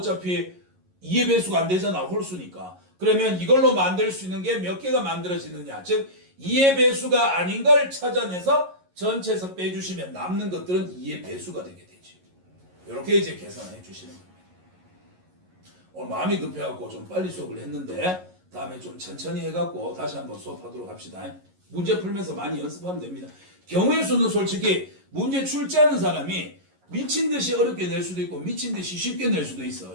2의 배수가 안 되잖아. 홀수니까. 그러면 이걸로 만들 수 있는 게 몇 개가 만들어지느냐. 즉 2의 배수가 아닌 걸 찾아내서 전체에서 빼주시면 남는 것들은 2의 배수가 되게 되지. 이렇게 이제 계산해 주시는 겁니다. 오늘 마음이 급해갖고 좀 빨리 수업을 했는데 다음에 좀 천천히 해갖고 다시 한번 수업하도록 합시다. 문제 풀면서 많이 연습하면 됩니다. 경우의 수는 솔직히 문제 출제하는 사람이 미친 듯이 어렵게 낼 수도 있고 미친 듯이 쉽게 낼 수도 있어.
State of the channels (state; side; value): late; left; 11 ms